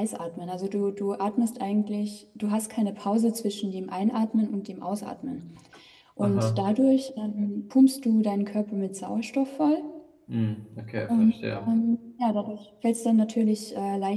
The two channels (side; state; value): both; identical; correlation 1.00